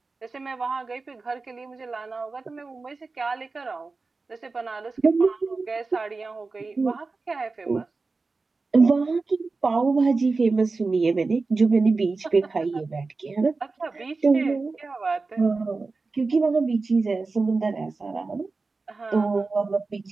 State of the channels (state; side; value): quieter; left; 3.9 dB